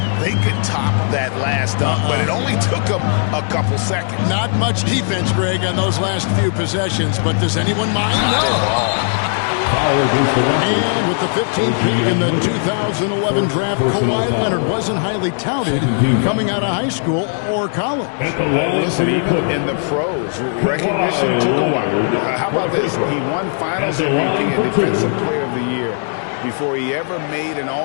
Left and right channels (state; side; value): silent; right; digital silence